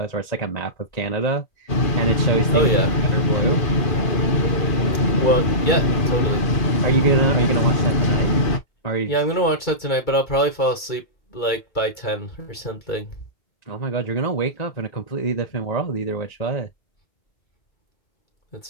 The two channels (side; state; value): right; late; 2.3 ms